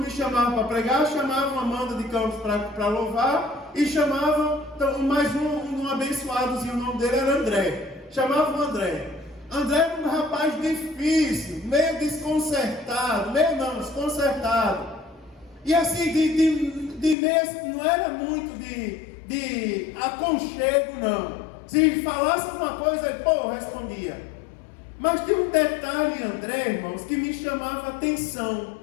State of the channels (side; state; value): right; drops out; at 17.2 s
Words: chamavam para pregar, chamavam Amanda de Campos para louvar, e chamavam mais um abençoadozinho, o nome dele era André. Chamavam André. André era um rapaz difícil, meio desconcertado, desconcertado. E assim, não era muito de aconchego, não. Se falasse alguma coisa, ele, respondia. Mas tem um detalhe, André, irmãos, que me chamava a atenção.